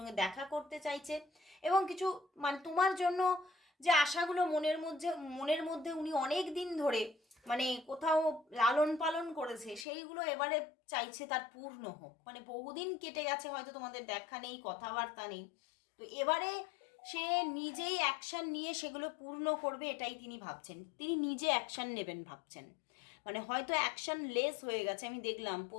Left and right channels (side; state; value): right; drops out; at 9.9 s